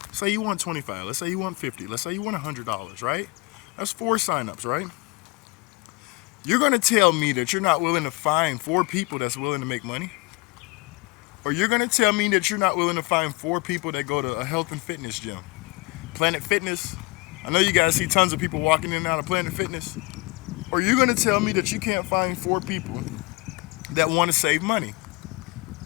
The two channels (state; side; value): quieter; right; 24.4 dB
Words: Say you want 25. Let's say you want 50. Let's say you want $100, right? That's 4 signups, right? You're going to tell me that you're not willing to find 4 people that's willing to make money? Or you're going to tell me that you're not willing to find 4 people that go to a health and fitness gym? Planet Fitness. I know you guys see tons of people walking in and out of Planet Fitness. Or you're going to tell me that you can't find 4 people that want to save money,